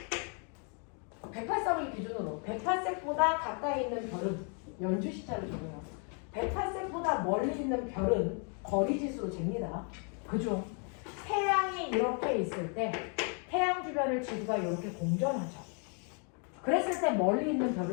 108색을 기준으로 108색보다 가까이 있는 별은 연주 시차를 적어요. 108색보다 멀리 있는 별은 거리 지수로 잽니다. 그중 태양이 이렇게 있을 때 태양 주변을 지구가 이렇게 공전하죠. 그랬을 때 멀리 있는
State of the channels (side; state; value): right; quieter; 39.8 dB